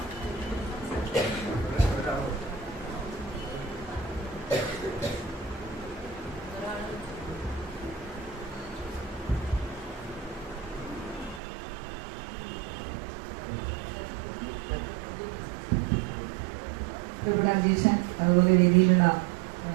ഇവിടെ അധ്യക്ഷൻ, അതുപോലെ വേദിയിലുള്ള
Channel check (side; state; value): left; drops out; at 11.4 s